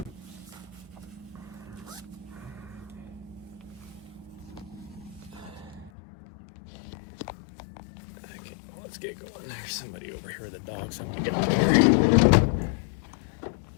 Okay, let's get going. There's somebody over here with the dogs. I want to get out of here.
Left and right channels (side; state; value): right; drops out; at 5.9 s